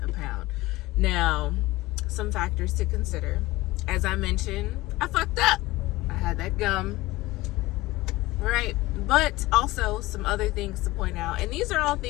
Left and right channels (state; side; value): quieter; right; 18.9 dB